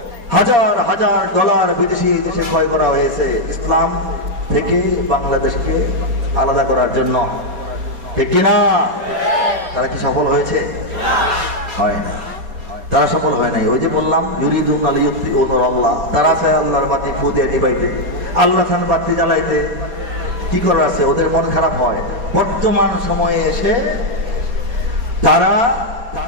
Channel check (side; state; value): left; late; 4.2 ms